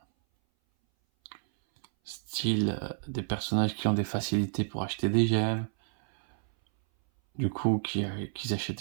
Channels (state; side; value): silent; left; 58 dB below the other